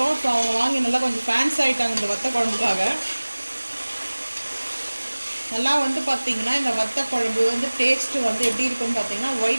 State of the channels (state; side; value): inverted; both; correlation -1.00